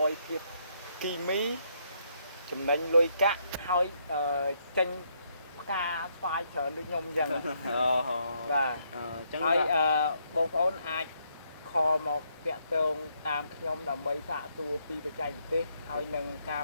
យភាពគីមីចំណេញលុយកាក់ហើយចេញផ្កាស្វាយច្រើនដូចខ្ញុំអញ្ចឹង បាទអញ្ចឹងហើយបងប្អូនអាចខលមកតាក់ទងតាមខ្ញុំដើម្បីសាកសួរពីបច្ចេកទេសហើយនឹងការ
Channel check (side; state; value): both; inverted; correlation -0.74